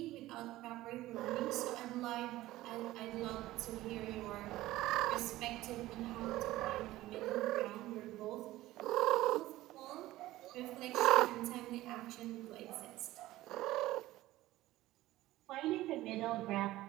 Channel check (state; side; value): quieter; left; 16.4 dB